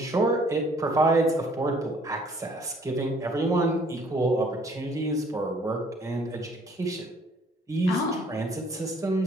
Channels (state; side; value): normal; both; correlation 0.60